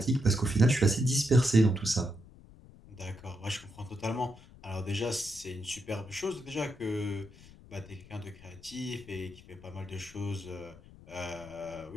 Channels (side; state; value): left; noise; rumble, 21 dB below the sound